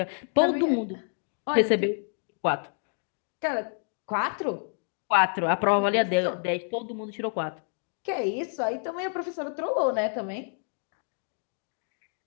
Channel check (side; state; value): right; silent; 55 dB below the other